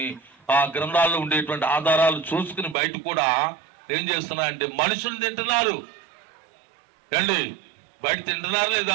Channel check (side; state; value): left; drops out; at 2.8 s